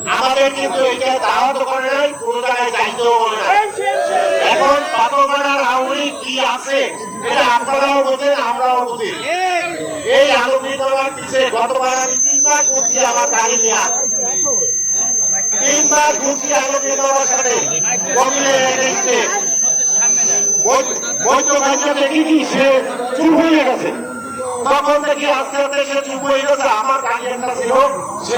আমাদের কিন্তু এটা দাওয়াত করে নাই, কোন জায়গায় দায়িত্বও বলে নাই। এখন পাথরঘাটার আউরি কি আছে এটা আপনারাও বোঝেন, আমরাও বুঝি। এই আলোকিত পিছিয়ে গতবার আমি 3 মাস ঘুরছি আমার গাড়ি নিয়ে, 3 মাস ঘুরছি আলোকিত সাথে দেখি কি সে চুপ হয়ে গেছে। তখন দেখি আস্তে আস্তে সে চুপ হয়ে গেছে, আমার গাড়ি একটা ছিল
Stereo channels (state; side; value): noise; right; hiss, 30 dB below the sound